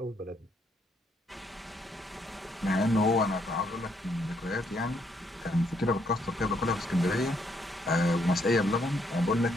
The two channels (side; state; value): both; normal; correlation 0.72